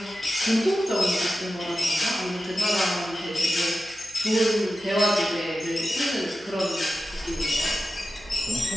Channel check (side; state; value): right; noise; hum, 26 dB below the sound